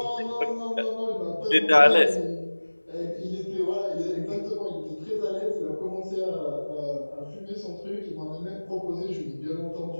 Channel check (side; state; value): both; inverted; correlation -1.00